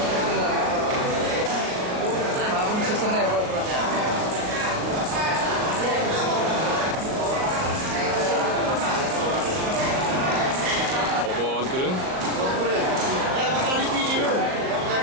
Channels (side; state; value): left; late; 38 ms